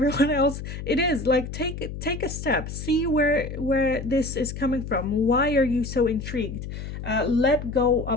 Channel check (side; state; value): left; noise; hum, 8 dB below the sound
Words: else, it is like, take a step, see where this is coming from. Why are you so intrigued? Let go